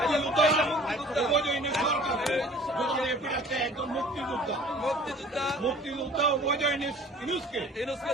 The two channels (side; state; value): both; normal; correlation 0.48